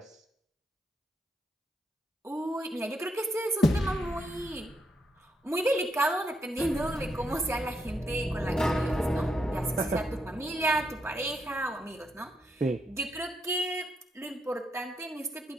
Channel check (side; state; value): both; normal; correlation 0.79